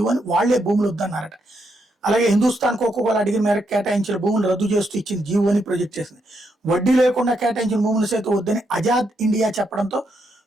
వాళ్లే భూములు వద్దన్నారట. అలాగే హిందుస్థాన్ కోకోకోలా అడిగిన మేరకు కేటాయించిన భూములు రద్దు చేస్తూ ఇచ్చిన జీవోని ప్రొజెక్ట్ చేసింది. వడ్డీ లేకుండా కేటాయించిన భూములు సైతం వద్దని ఆజాద్ ఇండియా చెప్పడంతో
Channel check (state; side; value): normal; both; correlation 0.79